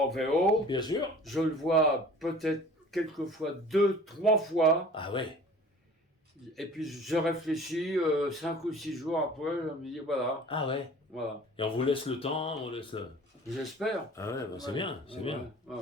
VO. Bien sûr. Je le vois peut-être quelquefois 2-3 fois. Ah ouais. Et puis je réfléchis 5 ou 6 jours après, je me dis voilà. Ah ouais. Voilà. Et on vous laisse le temps, on laisse le... J'espère. Ah ouais, c'est bien, c'est bien. Ouais.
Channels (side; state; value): both; normal; correlation 0.46